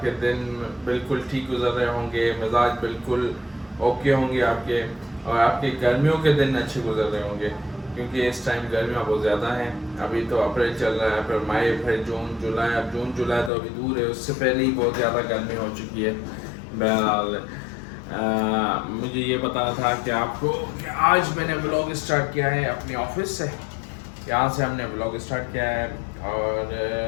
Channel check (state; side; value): drops out; right; at 13.5 s